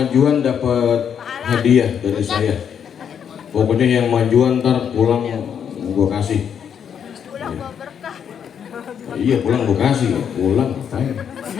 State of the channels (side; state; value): right; quieter; 8.1 dB